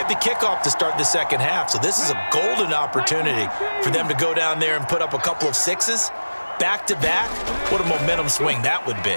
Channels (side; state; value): both; inverted; correlation -1.00